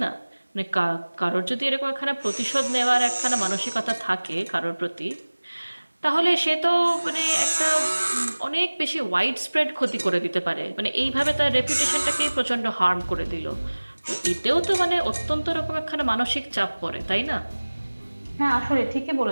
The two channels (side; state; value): both; inverted; correlation -1.00